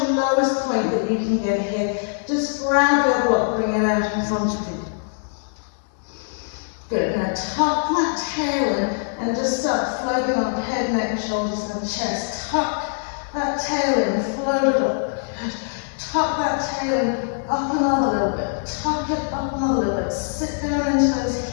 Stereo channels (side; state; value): right; silent; digital silence